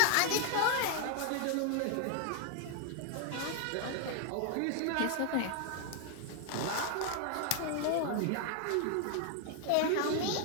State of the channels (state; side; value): different; both; correlation 0.00